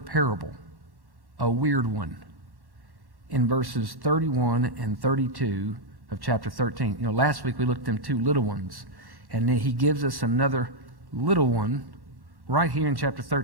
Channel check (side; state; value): left; late; 1.1 ms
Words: a weird one, in verses 31 and 32 of chapter 13. You know, last week we looked at them two little ones, and then he gives us another little one right here in chapter